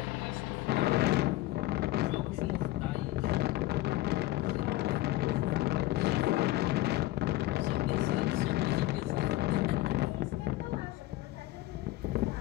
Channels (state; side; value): quieter; right; 17.0 dB